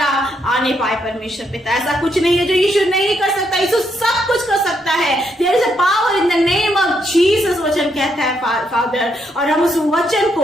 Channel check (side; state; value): both; normal; correlation 0.76